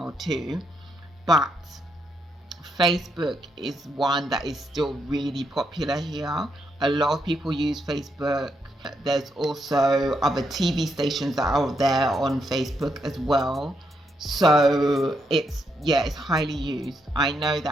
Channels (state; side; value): normal; both; correlation 0.78